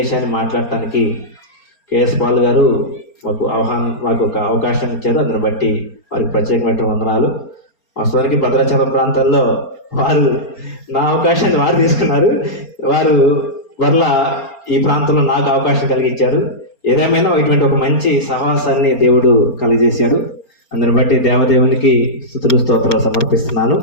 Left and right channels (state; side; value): late; right; 4.3 ms